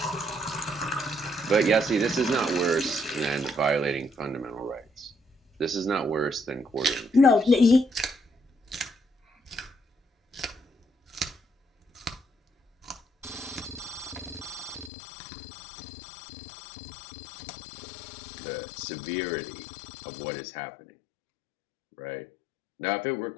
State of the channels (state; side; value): drops out; right; at 14.9 s